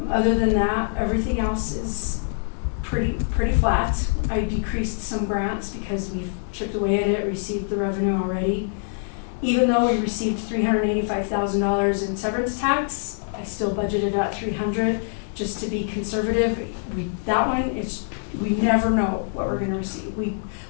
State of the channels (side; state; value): right; silent; digital silence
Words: Other than that, everything else is pretty flat. I decreased some grants because we've chipped away at it, received the revenue already. Even though we received $385,000 in severance tax, I still budgeted at $300,000 just to be conservative. We never know what we're going to receive. We